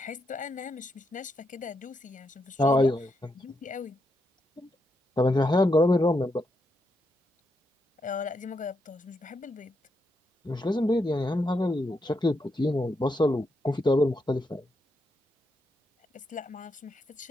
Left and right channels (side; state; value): both; normal; correlation 0.82